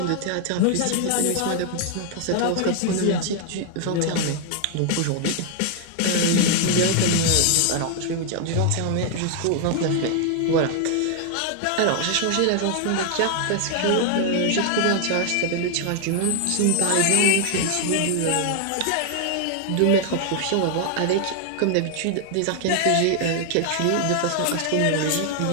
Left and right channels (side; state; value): both; different; correlation 0.00